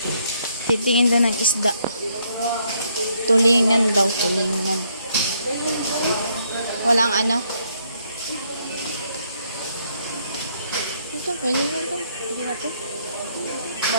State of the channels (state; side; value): inverted; both; correlation -0.71